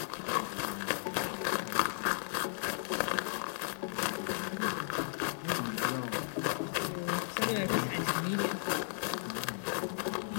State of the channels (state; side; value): silent; right; digital silence